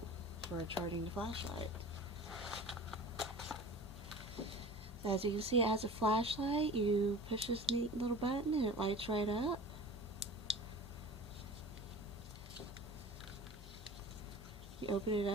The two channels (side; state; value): both; normal; correlation 0.39